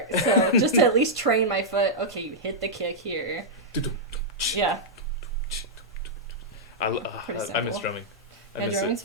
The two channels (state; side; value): normal; both; correlation -0.08